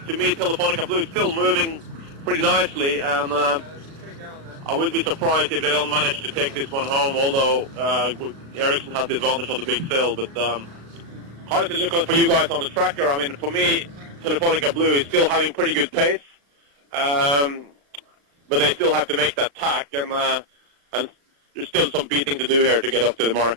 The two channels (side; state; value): left; late; 36 ms